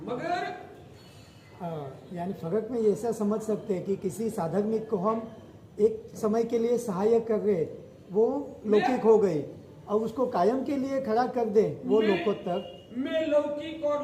मगर यानी फर्क में ऐसा समझ सकते हैं कि किसी साधक को हम एक समय के लिए सहायक कर रहे, वो लौकिक हो गई, और उसको कायम के लिए खड़ा कर दे, वो लोकोत्तर। मैं लौकिक और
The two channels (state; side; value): identical; both; correlation 1.00